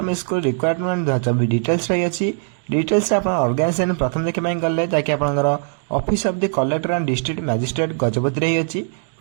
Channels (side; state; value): left; silent; 60 dB below the other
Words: school requirement 2024 details रही अच्छी। डिटेल्स आप ऑर्गेनाइजेशन प्रथम देखा गले जैकि आपंकर office of the collector and district magistrate Gajapati रही अच्छी।